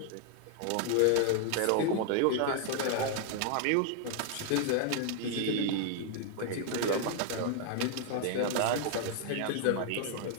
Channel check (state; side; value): different; both; correlation 0.00